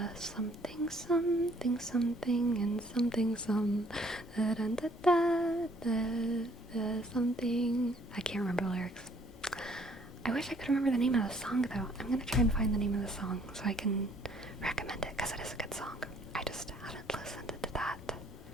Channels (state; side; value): normal; both; correlation 0.62